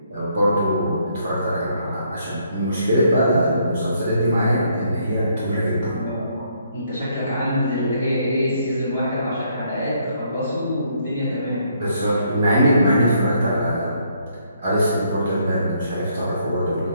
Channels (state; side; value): inverted; both; correlation -0.70